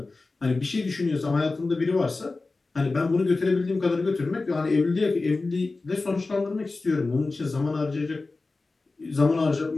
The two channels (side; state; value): right; quieter; 3.6 dB